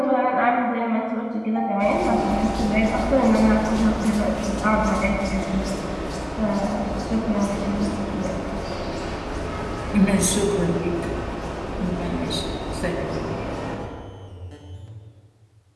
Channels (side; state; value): both; identical; correlation 1.00